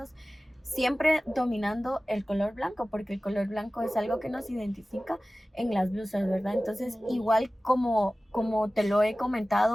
siempre dominando el color blanco, porque el color blanco es algo que nos identifica en las blusas, ¿verdad? Entonces, igual como te lo he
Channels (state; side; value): normal; both; correlation 0.97